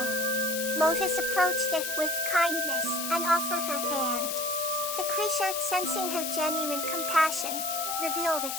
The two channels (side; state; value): left; noise; hiss, 3 dB below the sound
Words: Lotus approached it with kindness and offered her hand. The creature, sensing her genuine compassion, revealed